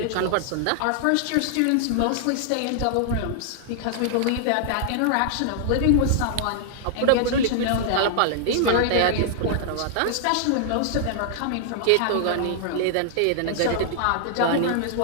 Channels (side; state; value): both; different; correlation -0.01